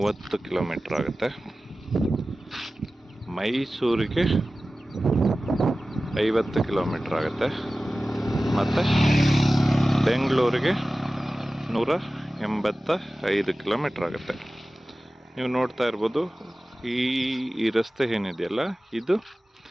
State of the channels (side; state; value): both; normal; correlation 0.96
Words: ಕಿಲೋಮೀಟ್ರ್ ಆಗುತ್ತೆ. ಮೈಸೂರಿಗೆ 50 ಕಿಲೋಮೀಟ್ರ್ ಆಗುತ್ತೆ. ಮತ್ತು ಬೆಂಗಳೂರಿಗೆ 185 ಕಿಲೋಮೀಟ್ರ್ ಆಗುತ್ತೆ. ನೀವು ನೋಡ್ತಾ ಇರ್ಬೋದು, ಈ ರಸ್ತೆ ಏನಿದೆಯಲ್ಲ, ಇದು